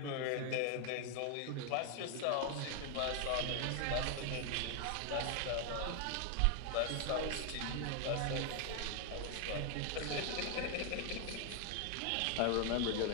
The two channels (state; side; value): different; both; correlation 0.01